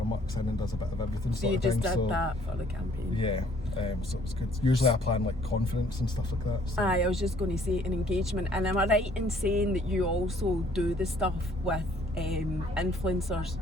mucks in and does a bit of everything. So you just did that for the campaign? Yeah, so it was good. Usually I plan like conference and stuff like that. So. Aye, I was just going to say an engagement. And am I right in saying that you also do the stuff with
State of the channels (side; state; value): both; normal; correlation 0.60